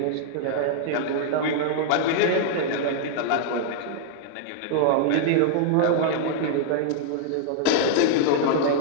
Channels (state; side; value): different; both; correlation -0.01